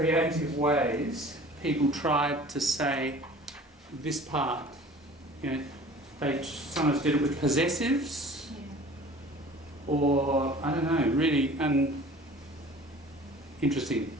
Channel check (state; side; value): normal; both; correlation 0.46